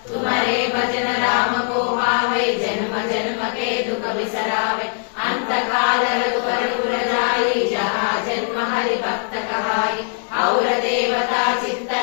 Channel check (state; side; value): silent; right; 55 dB below the other